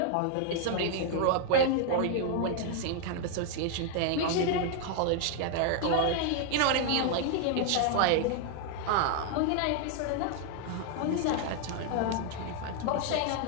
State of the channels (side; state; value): both; different; correlation 0.00